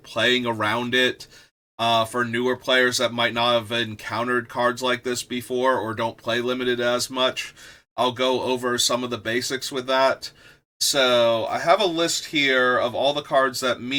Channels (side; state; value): both; identical; correlation 1.00